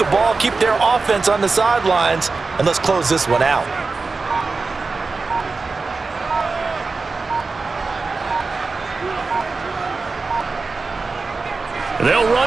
the ball, keep their offense on the sidelines, and let's close this one out. They'll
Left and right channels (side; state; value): left; quieter; 4.1 dB